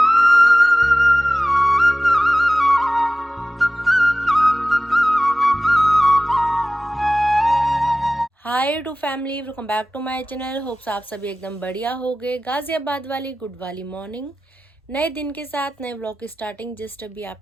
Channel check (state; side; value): normal; both; correlation 0.96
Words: Hi to family, welcome back to my channel. Hopes आप सभी एकदम बढ़िया हो गए। गाजियाबाद वाली गुड वाली मॉर्निंग, नए दिन के साथ नए व्लॉग की स्टार्टिंग जस्ट अभी